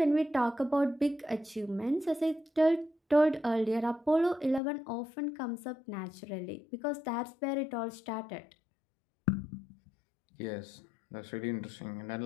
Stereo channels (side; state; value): right; drops out; at 4.6 s